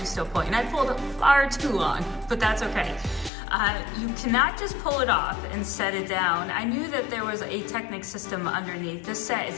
still pulling?" And I pulled it far too long, but that's okay. You cannot just pull it off and set it down. I knew that there was a Technic system underneath. This set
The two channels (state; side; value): drops out; right; at 3.3 s